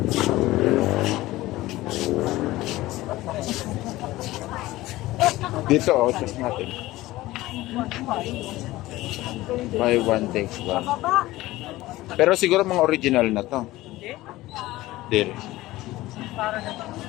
Dito, test natin. Buy one takes one. Pero siguro mga original na to. Hindi.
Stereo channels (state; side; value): quieter; right; 17.6 dB